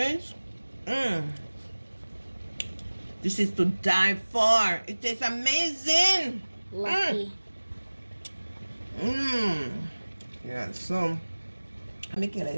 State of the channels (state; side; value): inverted; both; correlation -1.00